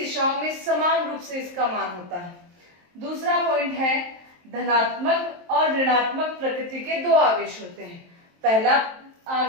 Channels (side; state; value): left; late; 23 ms